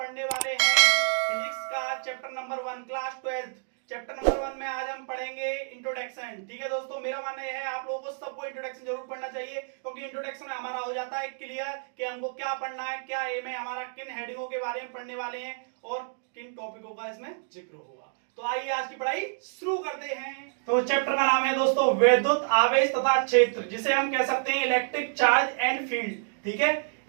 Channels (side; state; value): left; silent; digital silence